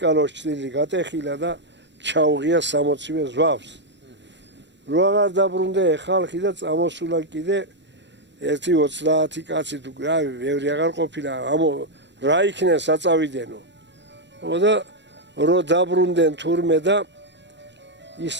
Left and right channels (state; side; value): late; left; 0.52 ms